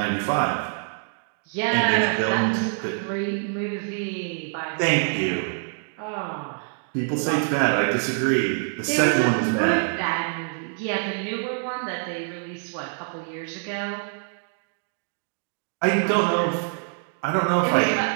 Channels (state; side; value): silent; left; 61 dB below the other